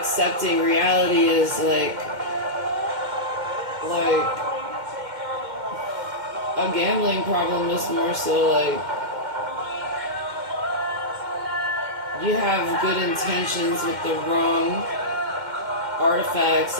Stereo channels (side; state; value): left; late; 2.1 ms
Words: reality as, like, a gambling problem is more so, like, you have good intentions with the wrong artifacts